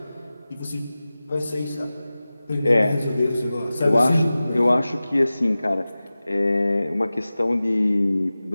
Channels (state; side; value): inverted; both; correlation -0.96